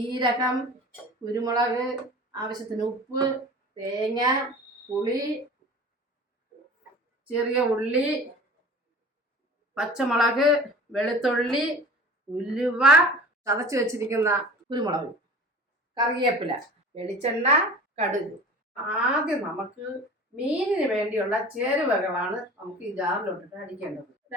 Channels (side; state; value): both; normal; correlation 0.40